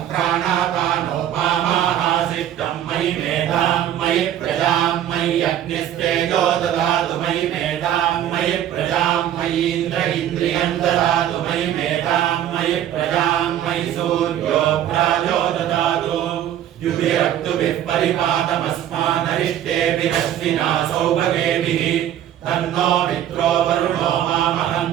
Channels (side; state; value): left; quieter; 11.1 dB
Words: प्राणापानो मामाहासिष्टं मयि मेधां मयि प्रजां मयि अग्निस्तेजो ददातु मयि मेधां मयि प्रजां मयीन्द्र इन्द्रियं ददातु मयि मेधां मयि प्रजां मयि सूर्यो प्राजो ददातु युभिरक्तुभिः परिपातमस्मानरिष्टेभिरश्विना सौभगेभिः तन्नो मित्रो वरुणो